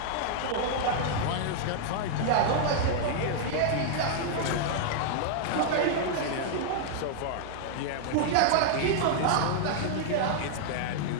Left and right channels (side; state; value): both; different; correlation -0.01